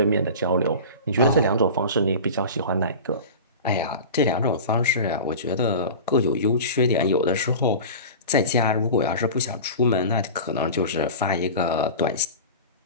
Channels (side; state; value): both; inverted; correlation -0.33